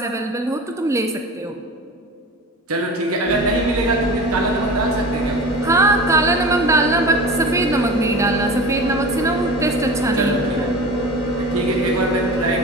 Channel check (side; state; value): both; normal; correlation 0.34